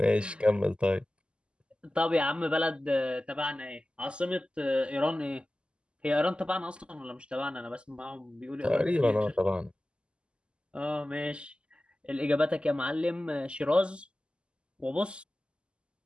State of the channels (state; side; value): late; left; 0.051 ms